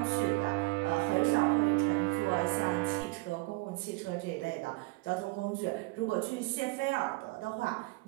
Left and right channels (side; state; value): left; quieter; 25.3 dB